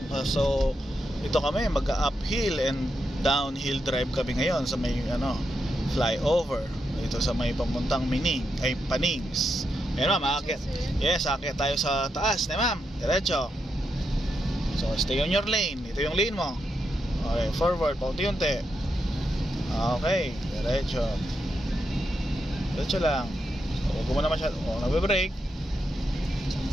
So ito kami mag-uphill and downhill drive kami ngayon sa may flyover ito sa may pamuntang Panings. Ayun ma'am, aakyat. Yes, aakyat tayo sa taas na ma'am. Diretso. So stay on your lane. Ito yung lane mo. Okay, forward, paunti-unti. Okay, diretso. Diretso lang. So huwag mo na masyado. Nagbe-brake.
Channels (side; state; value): both; normal; correlation 0.84